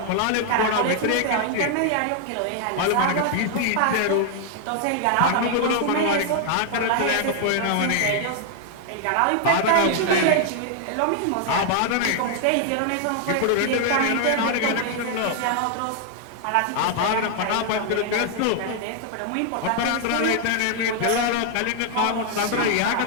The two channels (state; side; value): different; both; correlation 0.00